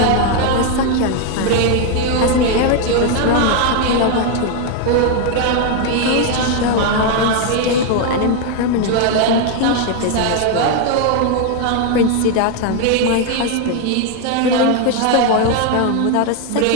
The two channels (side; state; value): both; different; correlation 0.01